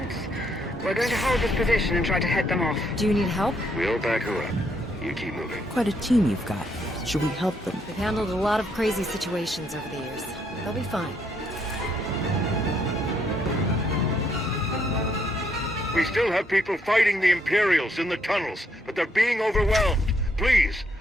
We're going to hold this position and try to head them off. Do you need help? We'll back her up. You keep moving. Quite a team you've got. Should we help them? They've handled a lot of crazy situations over the years. They'll be fine. We still have people fighting the Imperials in the tunnels, but they're being overwhelmed. Please,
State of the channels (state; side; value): normal; both; correlation 0.73